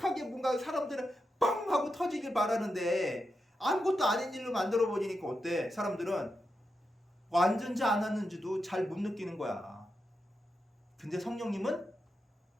뭔가 사람들은 빵 하고 터지길 바라는데 아무것도 아닌 일로 만들어 버리니까 어때? 사람들은 왔는지 안 왔는지도 잘 못 느끼는 거야. 근데 성령님은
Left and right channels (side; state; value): both; normal; correlation 0.87